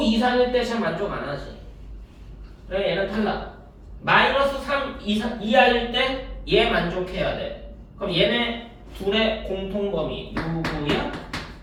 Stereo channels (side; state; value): both; identical; correlation 1.00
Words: 이상일 때 잘 만족 안 하지. 그래, 얘는 탈락. 마이너스 3 이하일 때 얘 만족해야 돼. 그럼 얘네 둘의 공통범위 누구야?